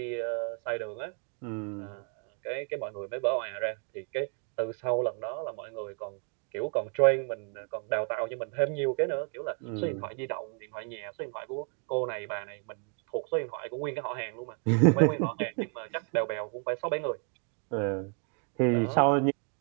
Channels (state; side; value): quieter; left; 38.3 dB